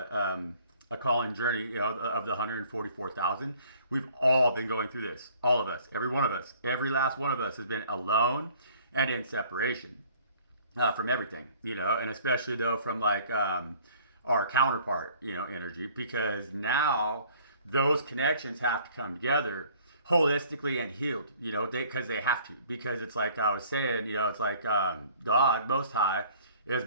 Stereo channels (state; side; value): inverted; both; correlation -0.55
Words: a calling journey, of the 144,000. We've all been going through this. All of us, every one of us, every last one of us has been alone and in separation from everything, and especially though from like our counterpart, energy, because now those connections have to come together holistically and healed, because they have to, because it's like I was saying, it's like God Most High is